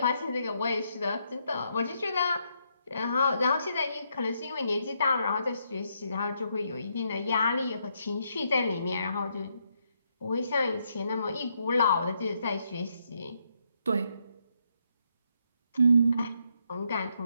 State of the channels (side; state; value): both; inverted; correlation -0.76